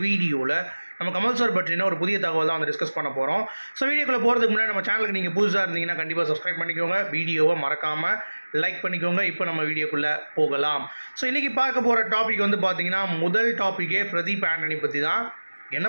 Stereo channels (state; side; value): inverted; both; correlation -1.00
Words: வீடியோவில் நம்ம கமல் சார் பற்றின ஒரு புதிய தகவல் தான் வந்து டிஸ்கஸ் பண்ண போகிறோம். ஸோ வீடியோக்குள்ளே போகிறதுக்கு முன்னாடி நம்ம சேனலுக்கு நீங்கள் புதுசாக இருந்தீங்கன்னா கண்டிப்பாக சப்ஸ்கிரைப் பண்ணிக்கோங்க, வீடியோவை மறக்காமல் லைக் பண்ணிக்கோங்க. இப்போ நம்ம வீடியோக்குள்ளே போகலாம். ஸோ இன்றைக்கி பார்க்க போகிற டாபிக் வந்து பார்த்தீங்கன்னா முதல் டாப்பிக்கே பிரதீப் ஆண்டனி பற்றி தான்.